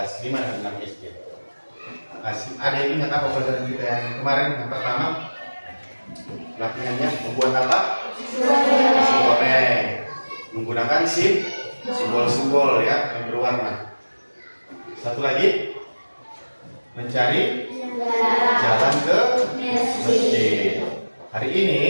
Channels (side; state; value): both; inverted; correlation -1.00